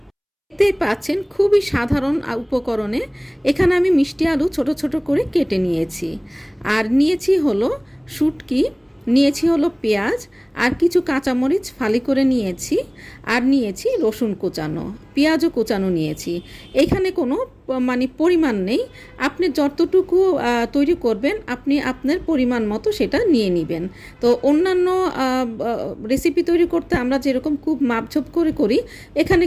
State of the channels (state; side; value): identical; both; correlation 1.00